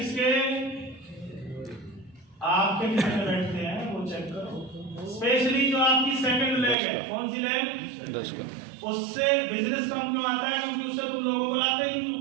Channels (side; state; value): left; drops out; at 6.8 s